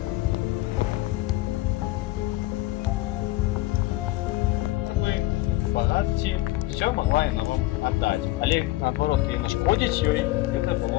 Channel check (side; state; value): right; quieter; 17.9 dB